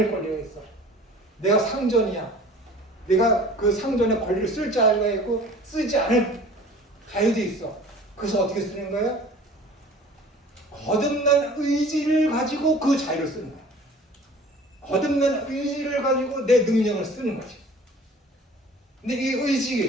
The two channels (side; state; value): both; normal; correlation 0.46